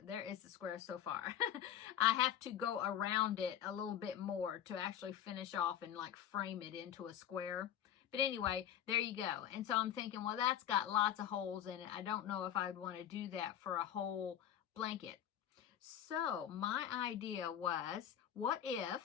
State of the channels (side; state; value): right; quieter; 10.2 dB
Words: There is the square so far. I have to go around it a little bit more to actually finish off and like frame it into a square. But anyway, there you go. And so I'm thinking, well, that's got lots of holes in it. I don't know if I'd want to do that for a whole blanket. So my idea was, what